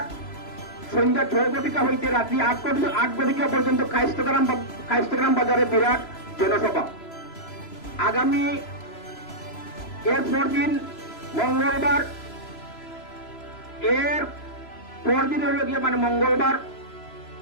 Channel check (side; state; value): right; late; 3.0 ms